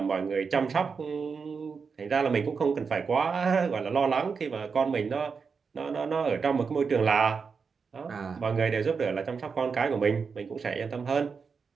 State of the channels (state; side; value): quieter; left; 5.4 dB